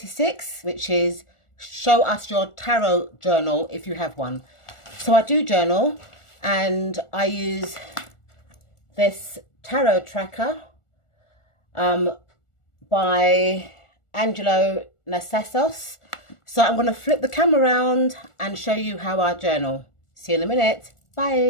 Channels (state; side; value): late; right; 1.4 ms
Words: which is show us your tarot journal if you have one. So I do journal and I use this tarot tracker by Angelo Nasios. So I'm going to flip the camera around and show you how I journal. See you in a minute.